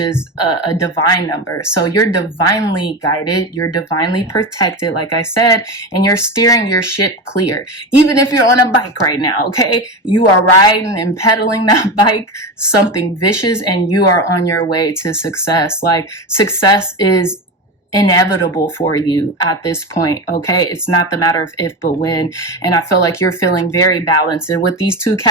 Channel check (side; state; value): both; normal; correlation 0.21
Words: a divine number. So you're divinely guided, you're divinely protected, like I said, and you're steering your ship clear. Even if you're on a bike right now, okay? You are riding and pedaling that bike, something vicious, and you are on your way to success. Like, success is inevitable for you at this point, okay? It's not the matter of if, but when. And I feel like you're feeling very balanced. And with these two